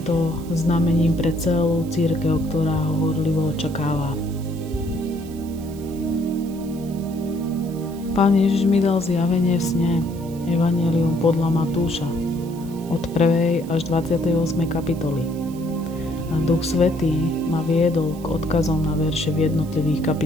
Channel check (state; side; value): noise; right; hiss, 22 dB below the sound